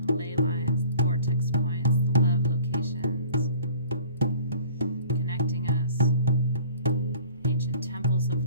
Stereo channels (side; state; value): both; inverted; correlation -0.48